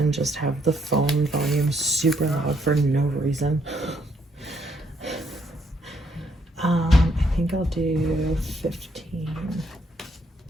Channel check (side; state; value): both; normal; correlation 0.71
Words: just have the phone volume super loud for no reason? I think I'll do 15.